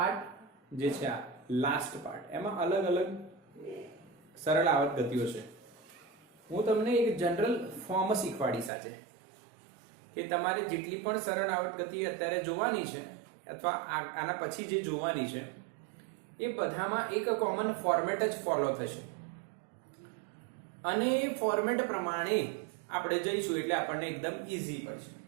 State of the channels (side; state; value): left; drops out; at 8.7 s